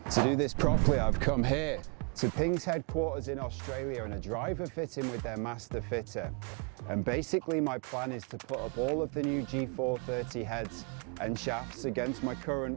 To do this properly, I've come here to Ping's headquarters in Australia and a driver fitting with their master fitter. And basically my plan is to put up all of the new G430 heads and shafts against my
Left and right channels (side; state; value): left; quieter; 35.3 dB